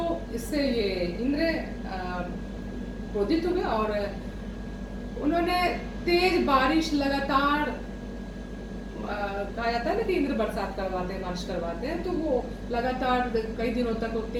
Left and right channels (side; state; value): both; identical; correlation 1.00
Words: इससे ये इंद्र क्रोधित हुए और उन्होंने तेज बारिश लगातार, कहा जाता है ना कि इंद्र बरसात करवाते हैं, बारिश करवाते हैं, तो वो लगातार कई दिनों तक वो